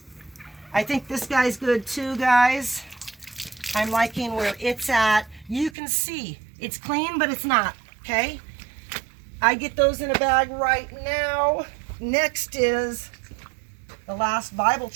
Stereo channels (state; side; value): drops out; left; at 5.8 s